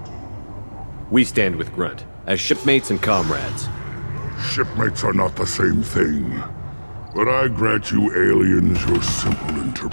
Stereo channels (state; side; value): inverted; both; correlation -1.00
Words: We stand with Grunt, as shipmates and comrades. Shipmates are not the same thing. But I grant you aliens your simple